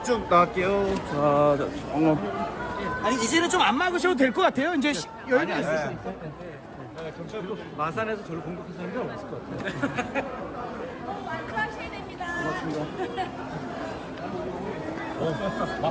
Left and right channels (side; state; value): both; identical; correlation 1.00